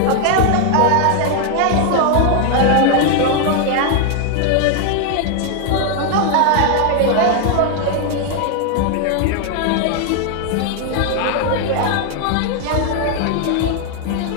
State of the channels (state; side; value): different; both; correlation 0.00